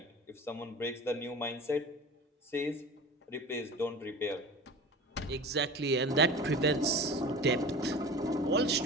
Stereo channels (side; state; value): both; normal; correlation 0.36